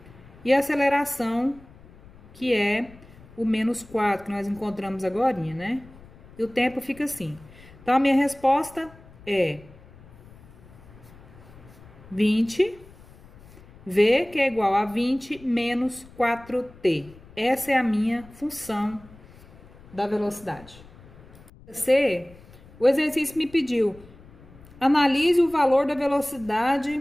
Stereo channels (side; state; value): left; noise; rumble, 22 dB below the sound